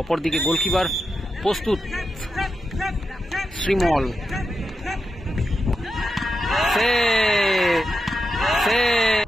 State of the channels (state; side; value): normal; both; correlation 0.87